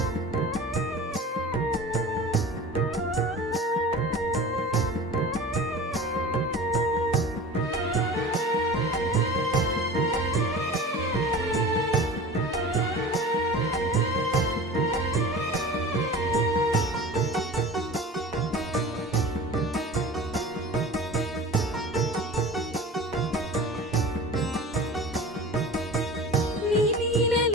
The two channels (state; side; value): normal; both; correlation 0.37